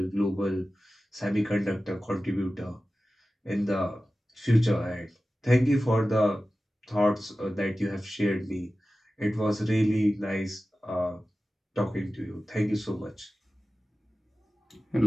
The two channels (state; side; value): normal; both; correlation 0.95